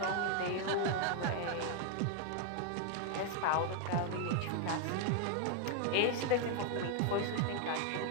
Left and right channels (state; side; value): different; both; correlation 0.00